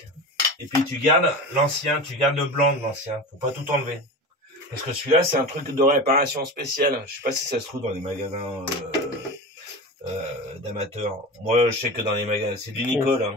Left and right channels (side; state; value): both; normal; correlation 0.28